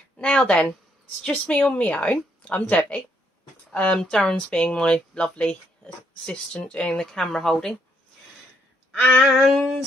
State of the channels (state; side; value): normal; both; correlation 0.72